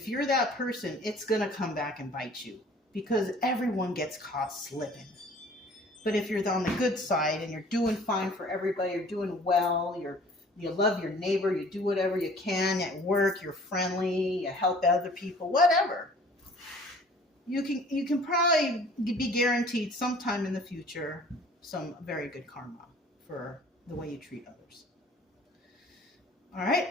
you're that person, it's going to come back and bite you, because everyone gets caught slipping. But if you're on the good side and you're doing fine for everybody, you're doing well, you love your neighbor, you do whatever you can at work, you're friendly, you help other people, whatever, you can probably be guaranteed sometime in the future some very good karma for the way you treat others. All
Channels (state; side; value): normal; both; correlation 0.51